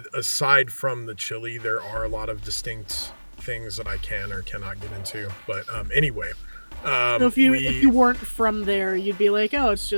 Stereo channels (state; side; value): inverted; both; correlation -1.00